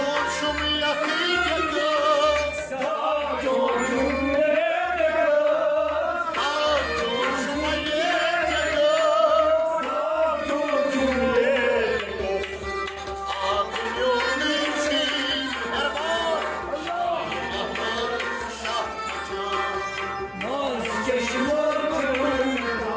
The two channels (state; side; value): identical; both; correlation 1.00